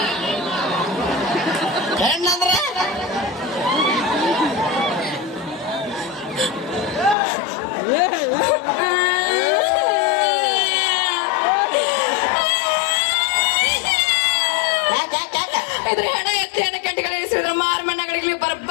ಇದ್ರ ಹೆಣ ಎತ್ತಿ ಹೆಣ ಕೆಂಟಿಗಳು ಇಳಿಸಿದ್ರ ಮಾರಮಣ್ಣಗಳಿಗೆ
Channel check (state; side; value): drops out; right; at 7.2 s